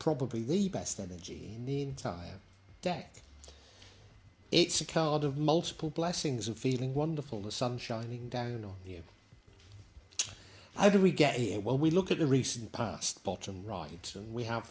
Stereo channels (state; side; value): identical; both; correlation 1.00